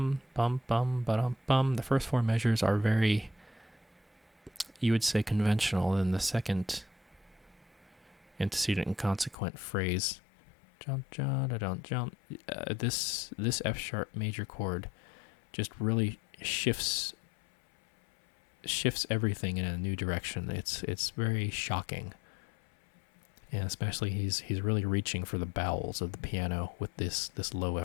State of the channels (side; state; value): right; drops out; at 9.3 s